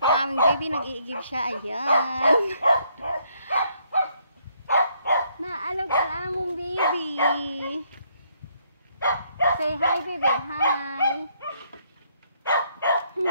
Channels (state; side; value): inverted; both; correlation -0.70